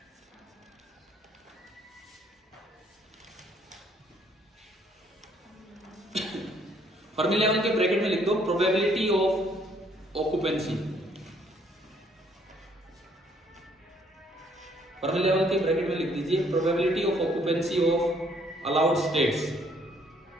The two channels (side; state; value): both; normal; correlation 0.65